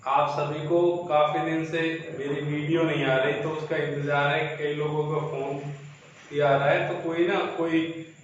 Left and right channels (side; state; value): both; identical; correlation 1.00